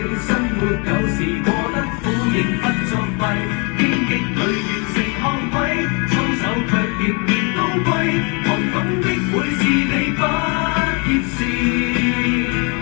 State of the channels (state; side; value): quieter; right; 33.2 dB